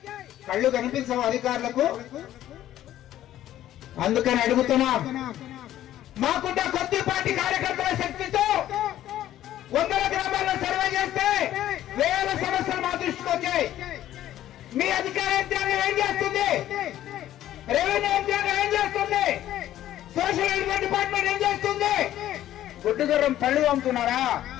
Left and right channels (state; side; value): quieter; right; 12.8 dB